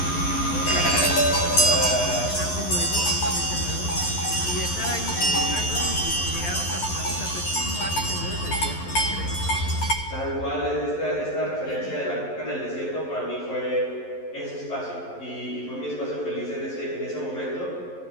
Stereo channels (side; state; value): right; late; 11 ms